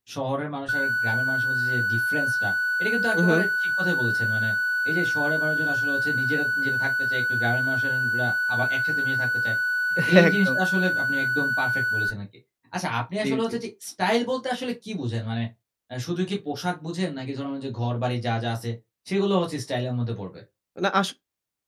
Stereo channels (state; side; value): identical; both; correlation 1.00